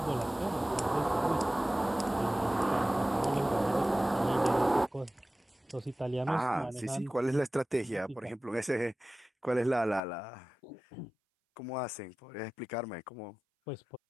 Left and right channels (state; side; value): drops out; right; at 10.0 s